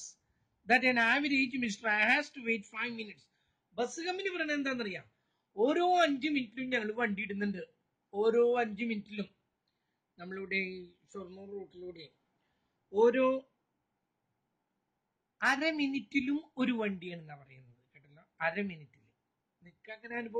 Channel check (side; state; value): both; identical; correlation 1.00